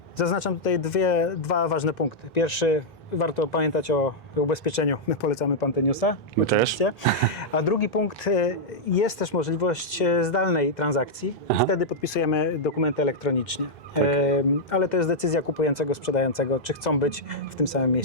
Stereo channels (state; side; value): normal; both; correlation -0.05